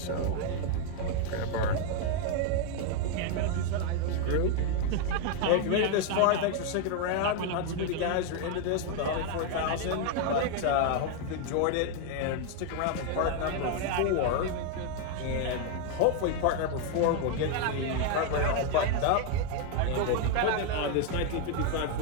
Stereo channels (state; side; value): different; both; correlation 0.01